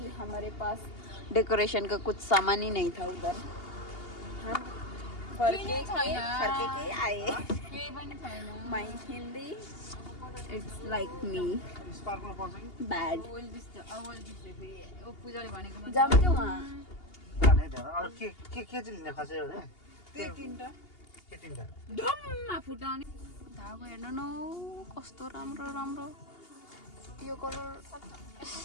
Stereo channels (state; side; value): late; right; 2.8 ms